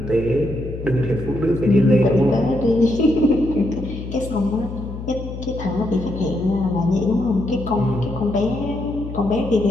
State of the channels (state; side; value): noise; left; hum, 9 dB below the sound